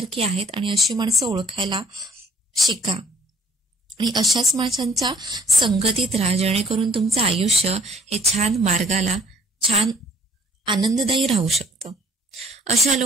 आहेत आणि अशी माणसं ओळखायला शिका आणि अशाच माणसांच्या संगतीत राहा, जेणेकरून तुमचं आयुष्य हे छान मार्गाला, छान आनंददायी राहू शकतं. अशा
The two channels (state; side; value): normal; both; correlation 0.59